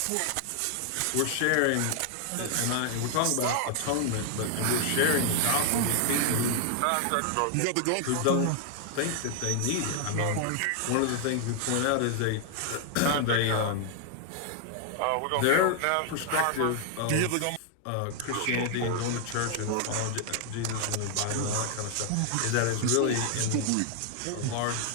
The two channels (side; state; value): both; different; correlation 0.00